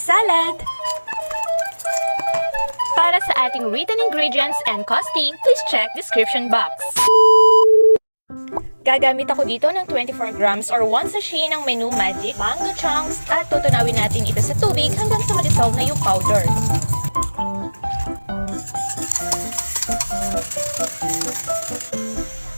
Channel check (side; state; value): both; inverted; correlation -1.00